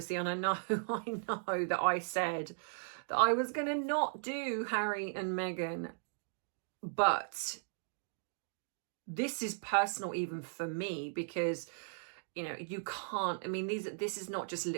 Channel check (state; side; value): silent; left; digital silence